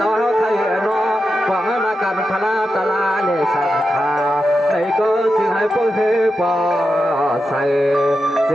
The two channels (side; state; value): both; normal; correlation 0.89